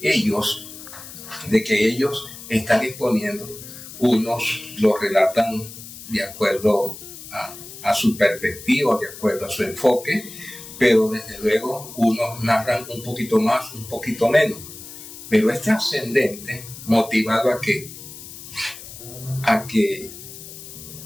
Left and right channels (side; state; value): left; noise; hiss, 14 dB below the sound